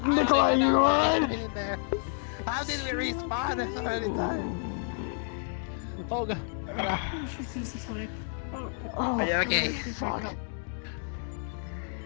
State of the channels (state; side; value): silent; right; 58 dB below the other